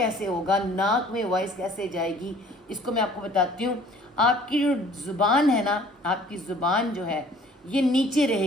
ہوگا؟ ناک میں وائس کیسے جائے گی؟ اس کو میں آپ کو بتاتی ہوں۔ آپ کی جو زبان ہے نا، آپ کی زبان جو ہے یہ نیچے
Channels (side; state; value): both; normal; correlation 0.54